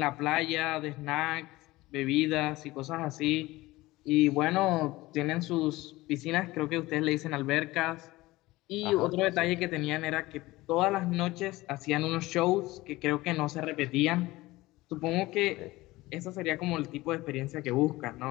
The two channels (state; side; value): quieter; right; 19.2 dB